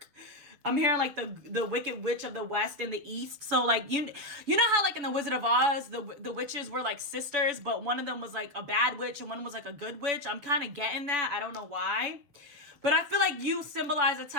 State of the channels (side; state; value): left; late; 7.0 ms